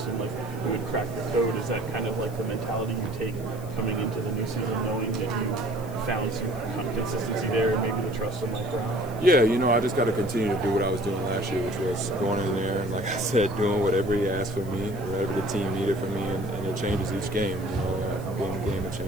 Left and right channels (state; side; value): noise; left; hiss, 21 dB below the sound